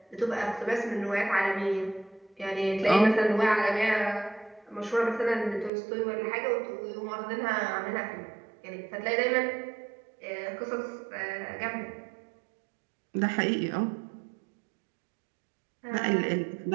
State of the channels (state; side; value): drops out; left; at 5.7 s